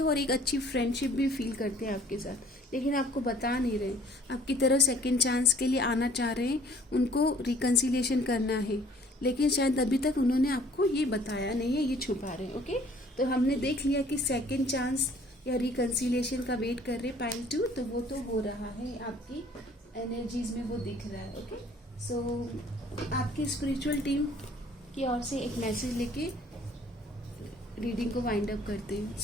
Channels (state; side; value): normal; both; correlation 0.56